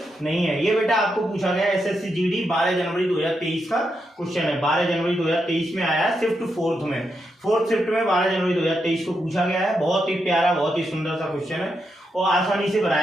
नहीं है। ये बेटा आपको पूछा गया एसएससी जीडी 12 जनवरी 2023 का क्वेश्चन है। 12 जनवरी 2023 में आया शिफ्ट 4th में, 4th शिफ्ट में 12 जनवरी 2023 को पूछा गया है। बहुत ही प्यारा, बहुत ही सुंदर सा क्वेश्चन है और आसानी से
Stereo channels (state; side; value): normal; both; correlation 0.83